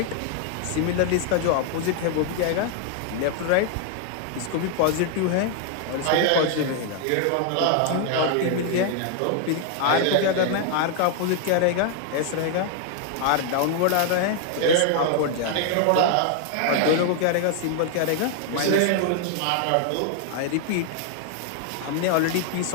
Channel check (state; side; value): different; both; correlation 0.00